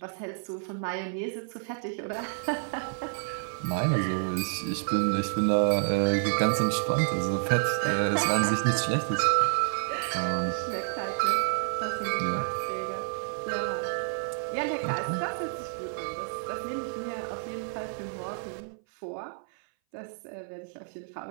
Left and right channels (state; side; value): silent; left; 58 dB below the other